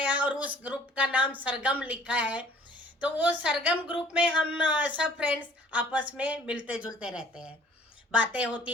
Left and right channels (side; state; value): both; normal; correlation 0.54